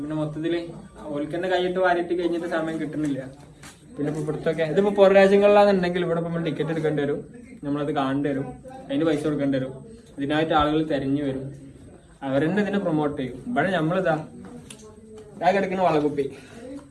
പിന്നെ മൊത്തത്തില് ഓൽക്കന്നെ കൈയിട്ട് വാരിയിട്ട് കഴിഞ്ഞിട്ട് സമയം കിട്ടുന്നില്ല. പിന്നെ ഇപ്പൊ ഇവിടുത്തൊക്കെ ഇതിപ്പോ പുറം രാജ്യങ്ങളിലാണെന്നുണ്ടെങ്കിൽ ഇവിടെ നമ്മൾ ടിക്കറ്റ് എടുക്കേണ്ടി വരും, നമ്മളത് കാണേണ്ടി വരും, അതിന് പൈസ കൊടുക്കേണ്ടി വരും. ഇതിനായിട്ട് ആളുകൾ തെരഞ്ഞു വരും, അവരെന്നെ ഇതിനെ പ്രൊമോട്ട് ചെയ്യും. ഇവിടെ നമ്മളിതാ കിടക്കുന്ന വളകുപ്പി,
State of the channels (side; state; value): both; identical; correlation 1.00